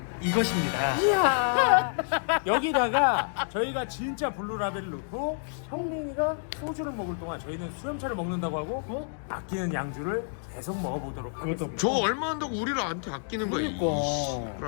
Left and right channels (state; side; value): silent; right; digital silence